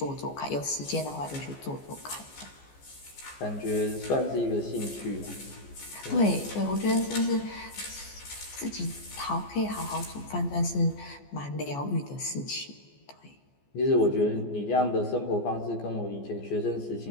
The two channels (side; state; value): right; late; 14 ms